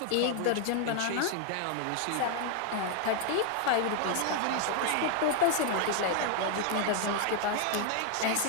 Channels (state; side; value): different; both; correlation 0.00